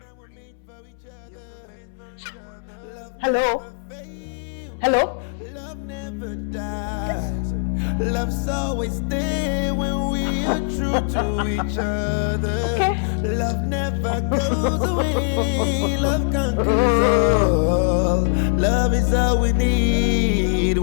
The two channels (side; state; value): right; silent; 64 dB below the other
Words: Hello? Hello? Love never dies. Love's always there when we are true to each other. Okay. Love never goes away. Love conquers all. Love is all we need